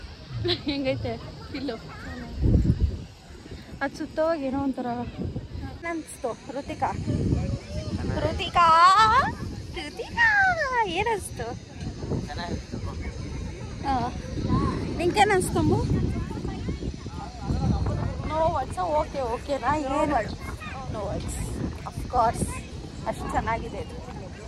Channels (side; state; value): both; identical; correlation 1.00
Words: ಹೆಂಗೈತೆ ಫಿಲ್ಲು ಅದು ಸುತ್ತೋವಾಗ ಏನೋ ಒಂಥರ ಅನಿಸ್ತು Ruthika Ruthika Ruthika ಏನಿಸ್ತು ನಿಂಗೇನು ಅನಿಸ್ತಂಬು no words okay ಓಕೆನಾ ಏನು ನೋ ವರ್ಡ್ಸ್ ಅಫ್ಕೋರ್ಸ್ ಅಷ್ಟು ಚೆನ್ನಾಗಿದೆ ಇದು